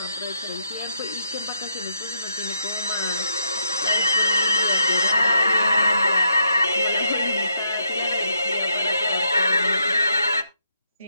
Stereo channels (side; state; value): both; inverted; correlation -0.78